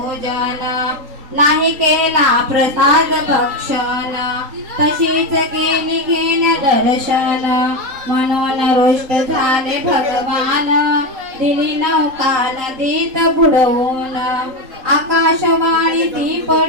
नाही केला प्रसाद भक्षण तशीच गेली घेण्या दर्शन म्हणून रुष्ट झाले भगवान दिली नौका नदीत बुडवून आकाशवाणी ती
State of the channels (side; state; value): left; late; 3.8 ms